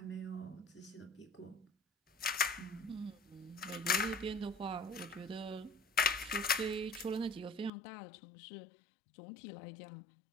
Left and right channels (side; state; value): right; drops out; at 7.7 s